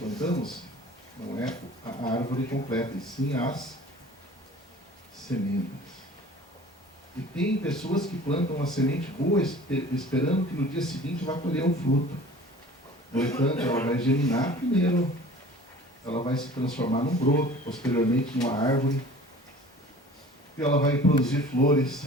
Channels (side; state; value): both; normal; correlation 0.44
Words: Não é a árvore completa, e sim as sementes. E tem pessoas que plantam uma semente boa esperando que no dia seguinte vá colher um fruto. No entanto, ela vai germinar primeiro, ela vai se transformar num broto, posteriormente numa árvore, e ela vai produzir flores